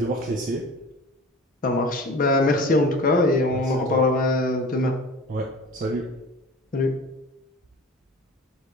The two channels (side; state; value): both; normal; correlation 0.39